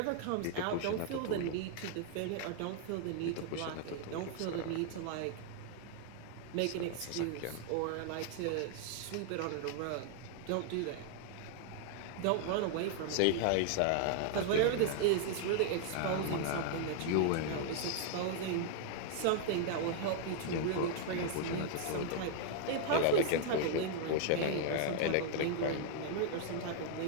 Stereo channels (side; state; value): both; different; correlation 0.00